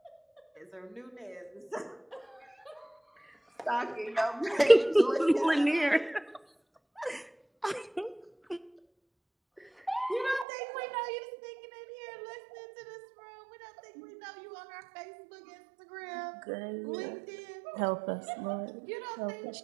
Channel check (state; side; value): drops out; left; at 10.5 s